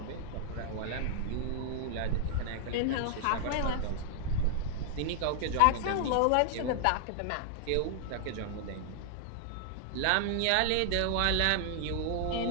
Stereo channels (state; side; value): different; both; correlation -0.01